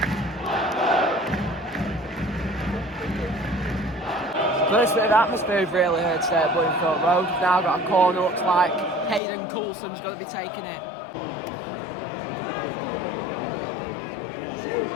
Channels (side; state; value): right; drops out; at 9.2 s